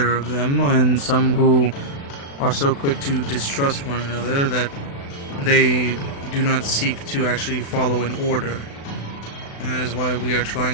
of them, and some who are so quick to distrust one another that they do not seek to actually follow an order. That is why we are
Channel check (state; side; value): late; right; 36 ms